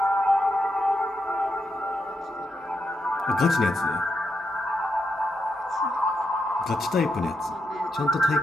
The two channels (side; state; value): both; normal; correlation 0.83